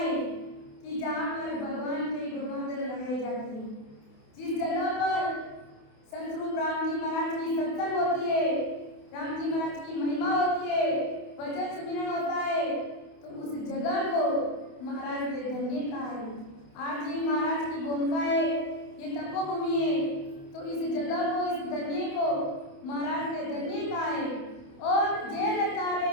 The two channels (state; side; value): late; right; 28 ms